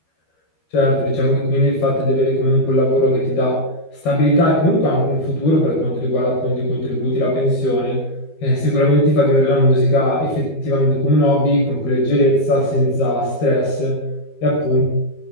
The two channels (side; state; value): right; late; 12 ms